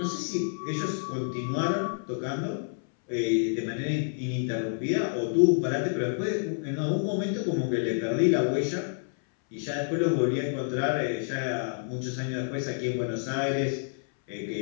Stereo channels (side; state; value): right; silent; 59 dB below the other